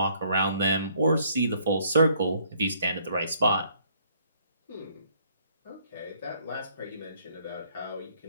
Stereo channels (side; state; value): both; inverted; correlation -0.65